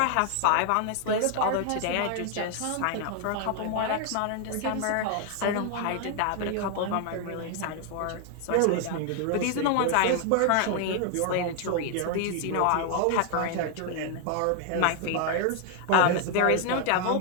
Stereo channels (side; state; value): both; different; correlation 0.00